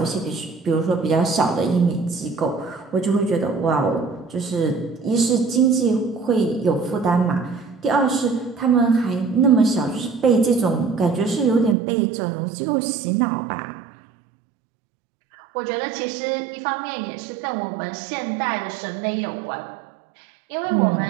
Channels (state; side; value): drops out; left; at 11.8 s